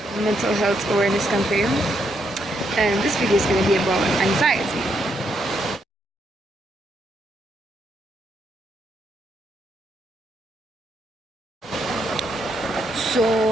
mental health awareness campaign, and this video is going to be about anxiety. So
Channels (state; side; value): normal; both; correlation 0.77